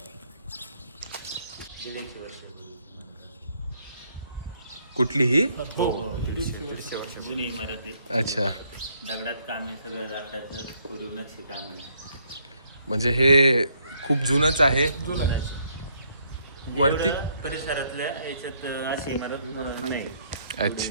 कुठली ही? जुनी इमारत आहे, अच्छा, दगडात काम आहे, सगळं लाकडाचं कोरीव नक्षी काम आहे. म्हणजे हे खूप जुनच आहे. वरती एवढं परिसरातल्या याच्यात अशी इमारत नाही.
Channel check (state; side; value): inverted; both; correlation -0.69